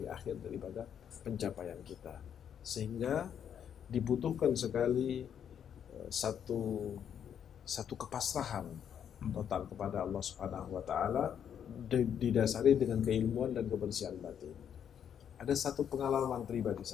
akhir daripada pencapaian kita. Sehingga dibutuhkan sekali satu kepasrahan total kepada Allah Subhanahu wa Ta'ala, didasari dengan keilmuan dan kebersihan batin. Ada satu pengalaman pribadi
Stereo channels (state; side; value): quieter; right; 8.7 dB